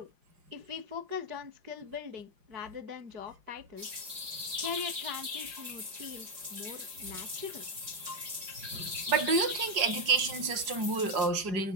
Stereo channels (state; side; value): late; left; 4.9 ms